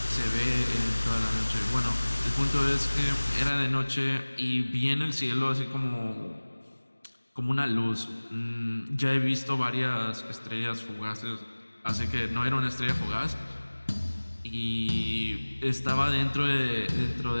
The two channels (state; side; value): inverted; both; correlation -1.00